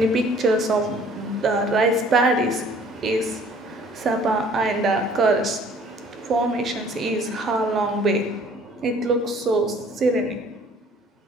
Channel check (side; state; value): both; normal; correlation 0.54